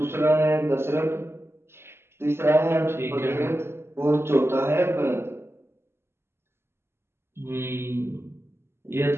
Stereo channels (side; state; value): left; late; 0.12 ms